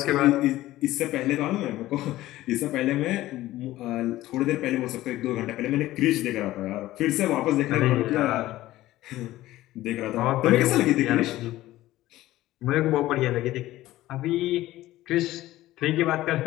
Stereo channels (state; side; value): quieter; right; 15.9 dB